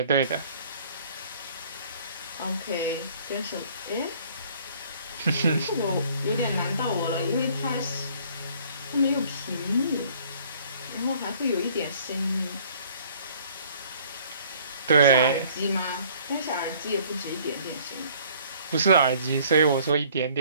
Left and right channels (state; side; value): inverted; both; correlation -0.56